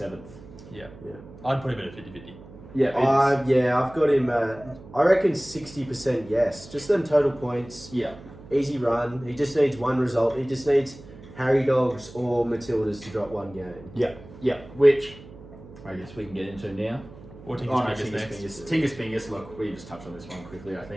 Yeah. Yeah. I'd put him in a 50-50. Yeah, I've got him. I reckon 60% yes. Just them total points. yeah, Easy run. He just needs one result. He just needs Harry Dogs or Matildas to drop one game. yeah. Which I guess we can get into now. Or Tinker's Oh, no, Fingers Tingus next. Fingers. Tingus Fingers. Look, we just touched on this one quickly. I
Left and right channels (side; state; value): right; noise; hum, 18 dB below the sound